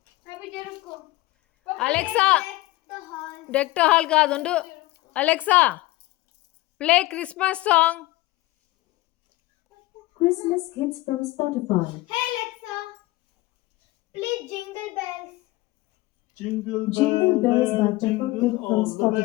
అలెక్సా, డెక్ ద హాల్ కాదు, ఉండు. Alexa, play Christmas song. Christmas hits from Spotify. Hey Alexa, play Jingle Bells. Jingle Bells by Peppa Pig from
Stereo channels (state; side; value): quieter; right; 19.6 dB